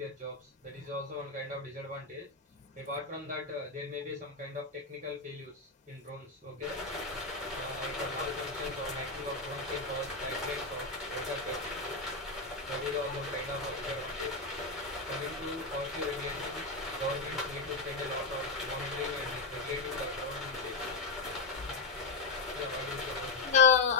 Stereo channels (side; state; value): right; quieter; 3.8 dB